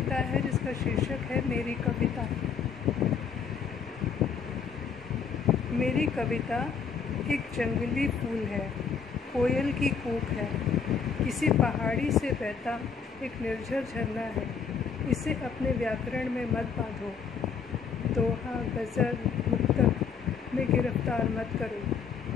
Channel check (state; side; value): quieter; right; 6.3 dB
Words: है जिसका शीर्षक है मेरी कविता। मेरी कविता एक जंगली फूल है, कोयल की कूक है, किसी पहाड़ी से बहता एक निर्झर झरना है। इसे अपने व्याकरण में मत बांधो, दोहा गज़ल मुक्तक में गिरफ्तार मत